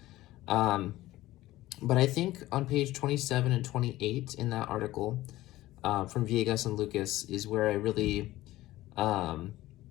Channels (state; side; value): quieter; right; 16.5 dB